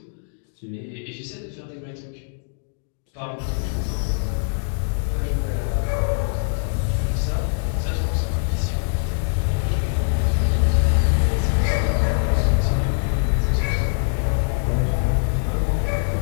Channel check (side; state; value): right; silent; digital silence